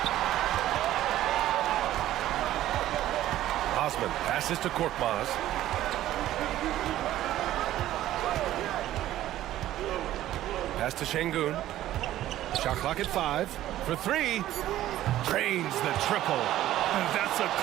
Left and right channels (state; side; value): quieter; left; 13.7 dB